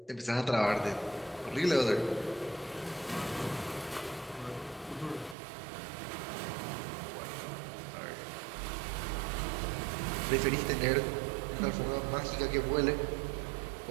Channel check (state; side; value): drops out; left; at 5.4 s